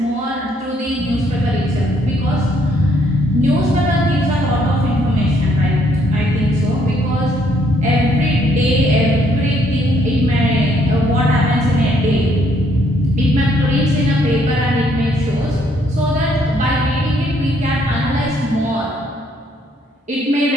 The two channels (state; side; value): normal; both; correlation 0.68